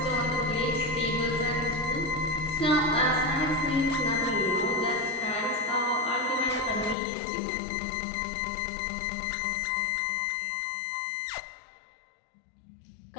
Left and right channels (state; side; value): drops out; right; at 7.0 s